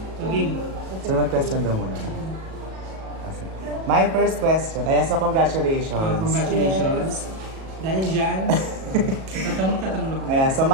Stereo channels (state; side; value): late; left; 37 ms